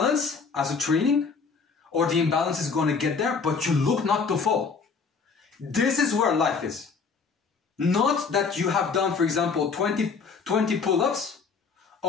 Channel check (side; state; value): right; quieter; 5.1 dB